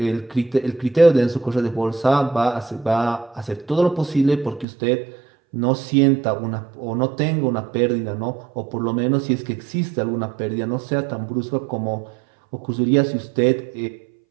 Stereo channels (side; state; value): left; drops out; at 4.7 s